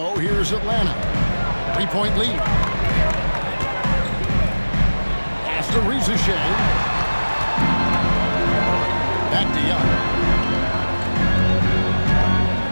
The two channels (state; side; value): inverted; both; correlation -1.00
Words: here's Atlanta. 3-point lead. Pass to Reza Shea. Back to Young.